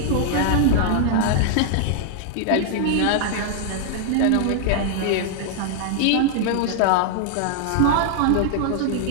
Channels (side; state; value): both; different; correlation 0.00